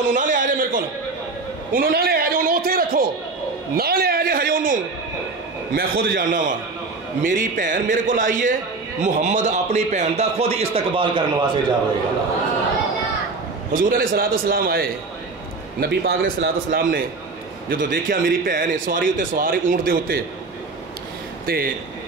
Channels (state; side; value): quieter; left; 3.8 dB